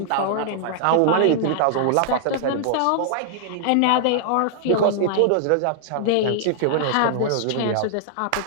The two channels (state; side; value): different; both; correlation -0.01